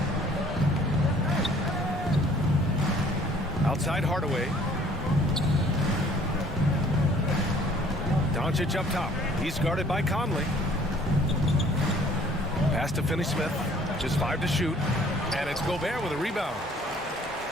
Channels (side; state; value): both; normal; correlation 0.56